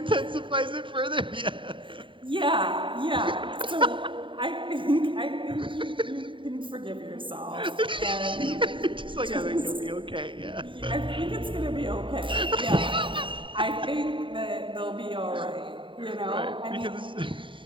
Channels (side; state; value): left; late; 0.24 ms